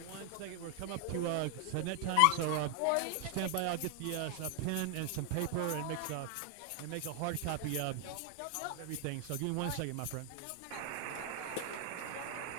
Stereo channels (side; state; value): both; different; correlation 0.00